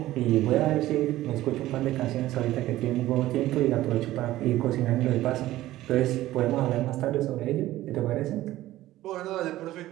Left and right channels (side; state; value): left; quieter; 15.5 dB